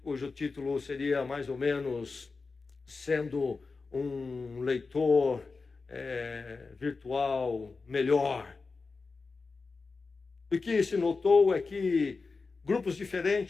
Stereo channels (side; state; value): right; quieter; 4.3 dB